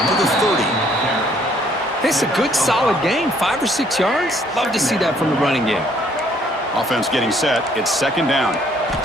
to the 30. It's a good, solid game. 5 or 6 yards. Love to see that from the running game. Offense getting set. It's 2nd down.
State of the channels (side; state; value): both; normal; correlation 0.63